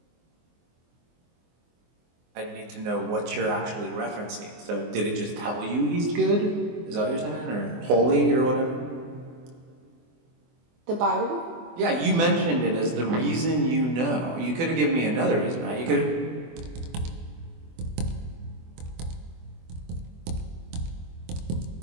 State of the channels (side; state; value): left; late; 24 ms